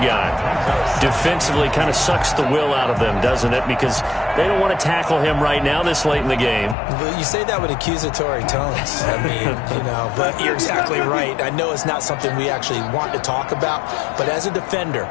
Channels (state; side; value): drops out; right; at 6.8 s